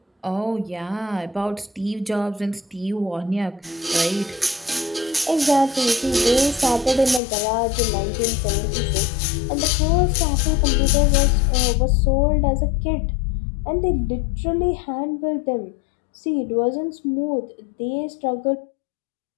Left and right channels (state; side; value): drops out; right; at 7.2 s